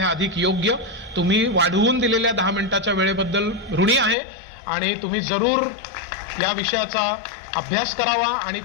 अधिक योग्य. तुम्ही वाढवून दिलेल्या 10 मिनिटाच्या वेळेबद्दल ऋणी आहे आणि तुम्ही जरूर या विषयाचा अभ्यास करावा आणि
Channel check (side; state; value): right; drops out; at 4.2 s